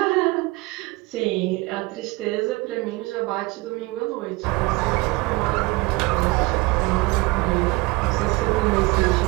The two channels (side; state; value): left; quieter; 23.3 dB